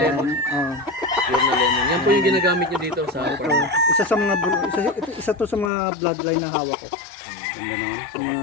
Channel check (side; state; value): right; drops out; at 5.7 s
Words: Ah, Pure na lemon. Yan po yung ginagamit niyo dito sa ito, farm. isa sa mga, isa to sa mga bloodline na hawak ko. Ganda naman. Sa mga